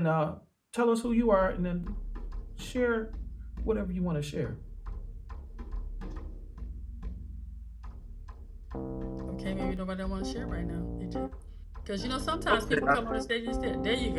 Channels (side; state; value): both; identical; correlation 1.00